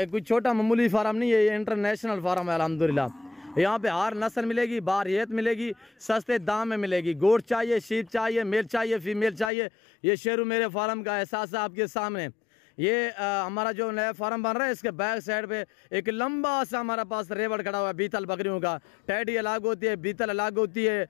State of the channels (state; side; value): drops out; right; at 9.5 s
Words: कोई छोटा मामूली फार्म नहीं है, ये इंटरनेशनल फार्म है अल्हम्दुलिल्लाह। यहाँ पे हर नस्ल मिलेगी, बारियत मिलेगी, सस्ते दाम में मिलेगी। गोट चाहिए, शीप चाहिए, मेल चाहिए, फीमेल चाहिए, ये शेरू मेरे फार्म का एहसास है आपके सामने। ये हमारा जो नया फार्म बन रहा है, इसके बैक साइड पे एक लंबा सा हमारा पास रेवड़ खड़ा हुआ है बीतल बकरियों का। टैडी अलग होती है, बीतल अलग होती है